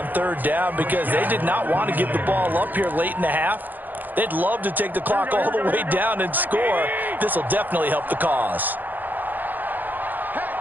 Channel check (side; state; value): left; late; 0.086 ms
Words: 3rd down because they did not want to give the ball up here late in the half. They'd love to take the clock all the way down and score. This will definitely help the cause.